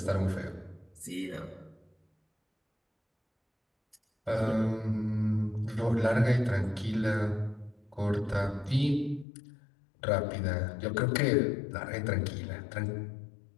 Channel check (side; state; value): right; drops out; at 9.2 s